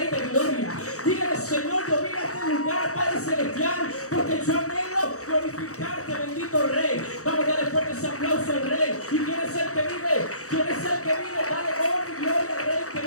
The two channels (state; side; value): late; right; 0.65 ms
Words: de Gloria. Dígale: Señor, yo vine a este lugar, Padre Celestial, porque yo anhelo glorificarte, bendito Rey. Vamos a darle fuerte ese aplauso al Rey. ¿Y quién es el que vive? ¿Quién es el que vive? Dale honra y gloria al Rey que